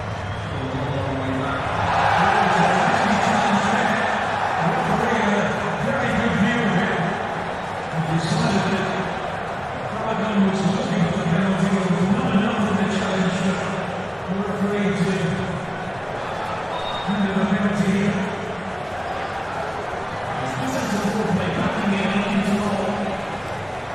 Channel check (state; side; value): identical; both; correlation 1.00